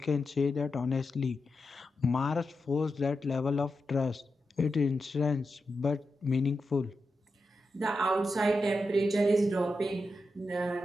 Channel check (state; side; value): normal; both; correlation 0.88